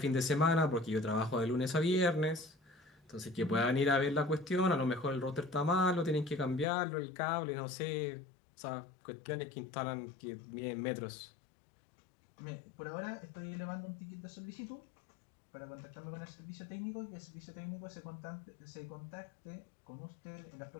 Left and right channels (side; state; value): right; drops out; at 6.7 s